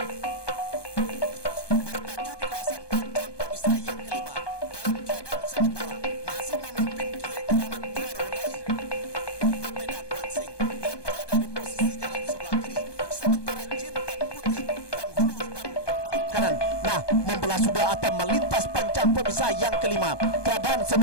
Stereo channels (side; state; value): right; late; 1.2 ms